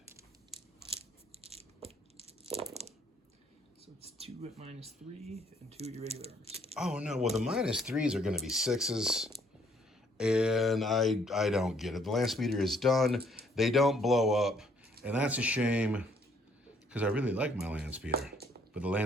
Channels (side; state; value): both; normal; correlation 0.66